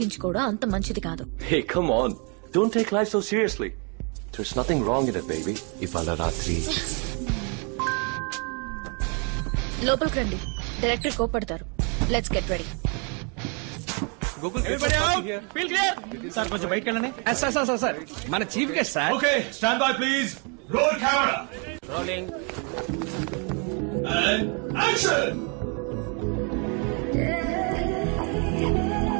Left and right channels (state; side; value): quieter; left; 35.8 dB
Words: అంత మంచిది కాదు. Hey, come on. Don't take life so seriously. There's nothing wrong in it, baby. ఇవాళ రాత్రి లోపలికి రండి, డైరెక్టర్ కోపడతారు. Let's get ready. సార్ కొంచెం బయటకు వెళ్ళండి. సార్ మన chief guest sir. Okay stand by please. Roll camera. Rolling. Action.